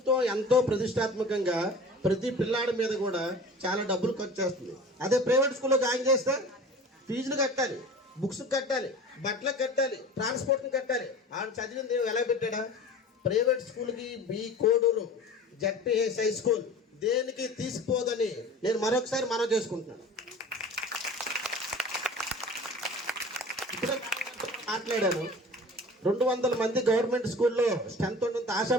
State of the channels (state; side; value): normal; both; correlation 0.39